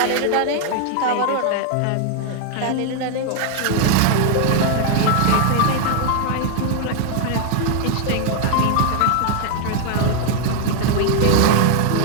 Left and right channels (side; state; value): both; different; correlation 0.00